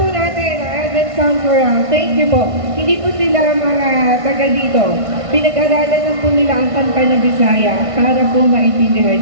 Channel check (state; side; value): late; left; 1.5 ms